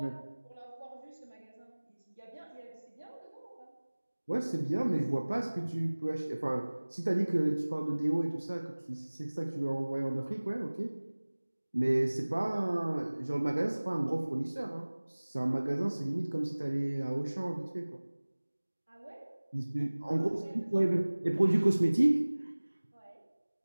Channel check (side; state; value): both; inverted; correlation -1.00